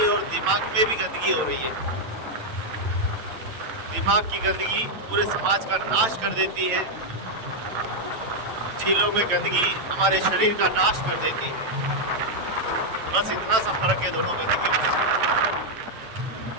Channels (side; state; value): left; late; 8.9 ms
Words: है और दिमाग में भी गंदगी हो रही है। दिमाग की गंदगी पूरे समाज का नाश कर देती है, झीलों में गंदगी हमारे शरीर का नाश कर देती है। बस इतना सा फर्क है दोनों गंदगी में।